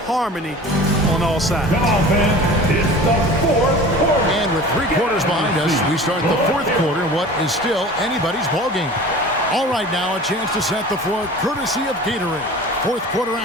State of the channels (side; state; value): both; normal; correlation 0.40